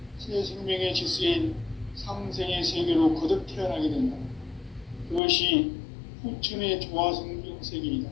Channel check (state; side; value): drops out; right; at 5.2 s